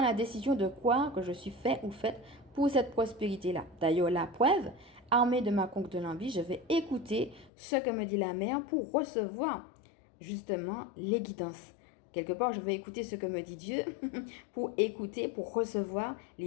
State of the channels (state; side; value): drops out; right; at 7.5 s